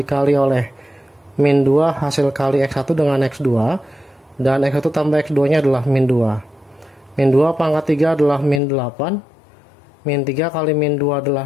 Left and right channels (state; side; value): drops out; right; at 8.6 s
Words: oleh min 2 hasil kali X1 dengan X2, dan X1 tambah X2 nya adalah min 2. Min 2 pangkat 3 adalah min 8, min 3 kali min 2 adalah